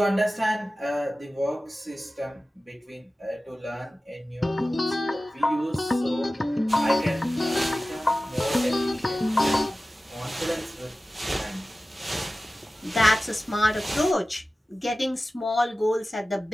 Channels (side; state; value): both; normal; correlation 0.96